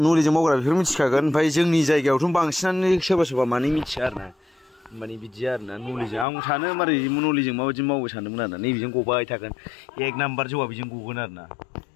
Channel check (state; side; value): drops out; right; at 6.2 s